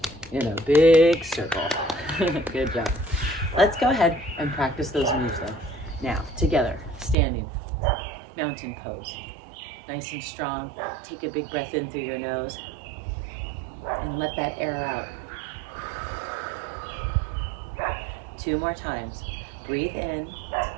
in a big circle. Good job. Let's go ahead and practice those moves though. Now, together, standing, mountain pose. Nice and strong. Take a big breath in through your nose and let that air out. 2 more times. Breathe in.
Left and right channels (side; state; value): left; drops out; at 7.2 s